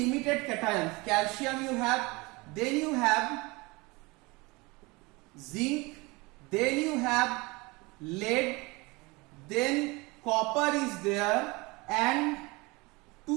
cations. Calcium you have, then you have zinc, then you have lead, then copper is there, and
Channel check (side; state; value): left; quieter; 24.8 dB